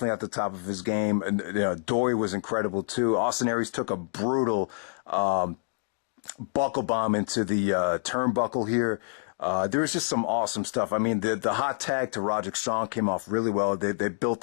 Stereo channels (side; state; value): right; silent; digital silence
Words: at the top of his game, and Doi was incredible too. Austin Aries took a brutal buckle bomb into the turnbuckle here. There was just some awesome stuff. I mean, the hot tag to Roderick Strong came off really well. They built